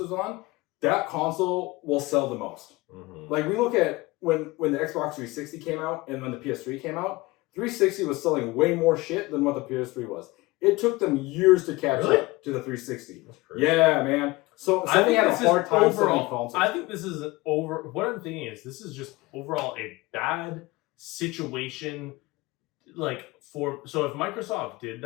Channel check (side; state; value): right; quieter; 21.5 dB